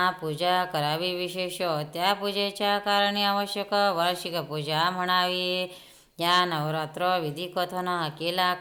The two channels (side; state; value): both; identical; correlation 1.00